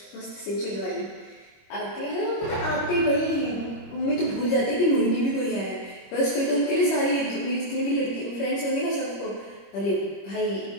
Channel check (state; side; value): late; right; 25 ms